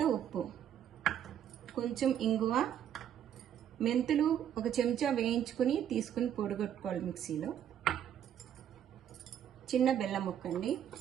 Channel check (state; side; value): quieter; left; 9.8 dB